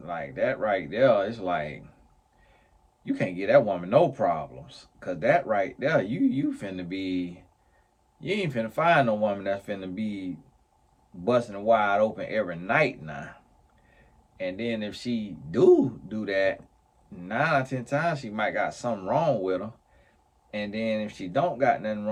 right there, it's like you can't get that woman no problems. Cause that right there, you finna be, you ain't finna find no woman that's finna be busting wide open every night now. And then if she do that, 9 or 10 times she might got something wrong with her. And then if she don't got nothing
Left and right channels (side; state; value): both; identical; correlation 1.00